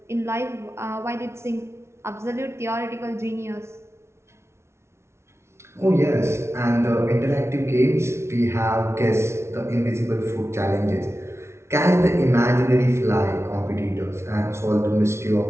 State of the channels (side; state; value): left; late; 0.13 ms